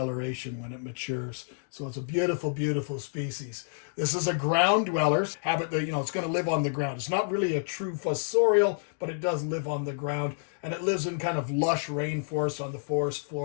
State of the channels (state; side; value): silent; right; digital silence